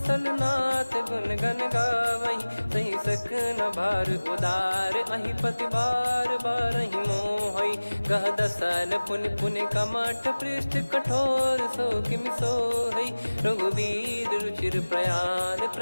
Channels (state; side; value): inverted; both; correlation -1.00